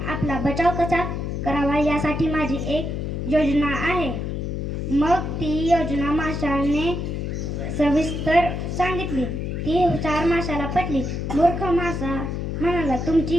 आपला बचाव कसा करावा यासाठी माझी एक योजना आहे. मग ती योजना माशाने सविस्तर सांगितली. ती हुशार माशाला पटली. मूर्ख मासा म्हणाला, तुमची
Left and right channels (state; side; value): noise; left; hum, 3 dB below the sound